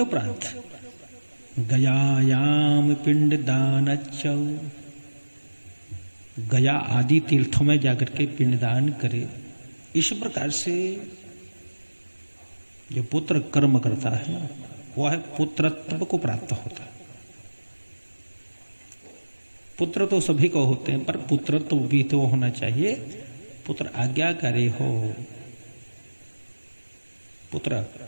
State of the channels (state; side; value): inverted; both; correlation -1.00